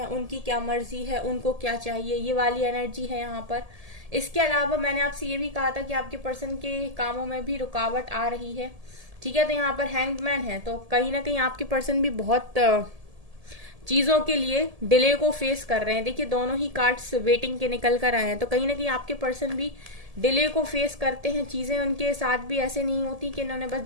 उनकी क्या मर्जी है, उनको क्या चाहिए, ये वाली एनर्जी है यहाँ पर। इसके अलावा मैंने आपसे ये भी कहा था कि आपके पर्सन के कामों में भी रुकावट आ रही है, ठीक है। तो यहाँ पर हैंग्ड मैन है, तो कहीं ना कहीं आपके पर्सन भी बहुत चीजों के लिए डिले को फेस कर रहे हैं। देखिए दोनों ही कार्ड्स वेटिंग के निकल कर आए हैं, तो कहीं ना कहीं आपके पर्सन भी डिले को फेस करते हैं। चीजें उनके साथ भी ऐसे नहीं होती कि इन्होंने बस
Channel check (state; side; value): late; left; 1.7 ms